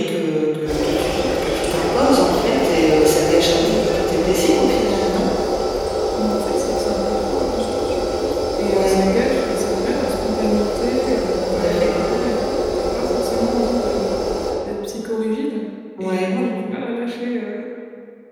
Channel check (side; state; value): both; identical; correlation 1.00